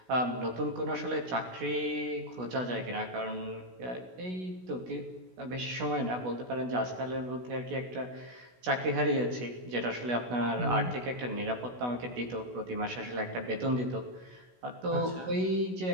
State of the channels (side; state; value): left; late; 16 ms